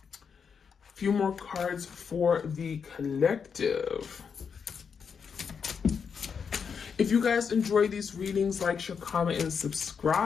Few more cards for the collective. If you guys enjoy these readings, like, share, comment, and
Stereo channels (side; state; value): right; quieter; 6.4 dB